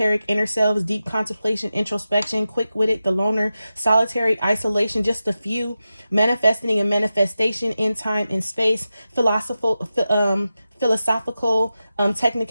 inner selves, deep contemplation, introspection, quick-witted, the loner, solitary, isolation, just a few, manifesting and manifestation in time and space, philosophical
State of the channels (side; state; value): both; inverted; correlation -0.92